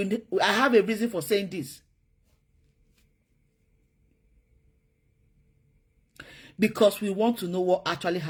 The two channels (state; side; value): identical; both; correlation 1.00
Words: I have a reason for saying this. Because we want to know what actually